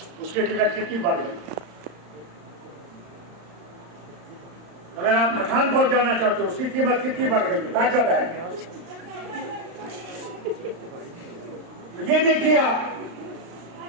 उसकी टिकट कितनी बढ़ गई। अगर आप पठानकोट जाना चाहते हो, उसकी कीमत कितनी बढ़ गई। बैठक है, ये देखिए आप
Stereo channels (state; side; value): late; left; 35 ms